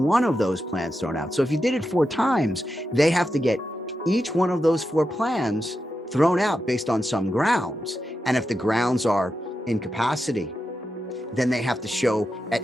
of those plans thrown out. So if you did it 4 times, they have to get each one of those 4 plans thrown out based on some grounds. And if the grounds are incapacity, then they have to show at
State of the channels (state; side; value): normal; both; correlation 0.88